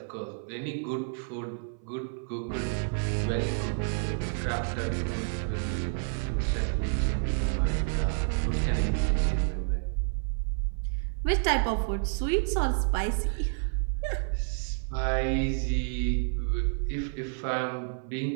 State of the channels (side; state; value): left; silent; 58 dB below the other